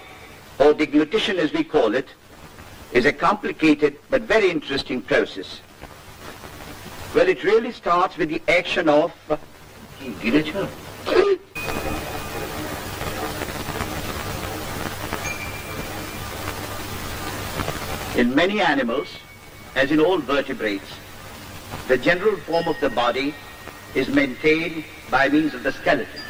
or deglutition as we call it, is a complicated but very interesting process. Well, it really starts with the action of in many animals, as in all vertebrates, the general form of the body is maintained by means of the skeleton.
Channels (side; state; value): both; identical; correlation 1.00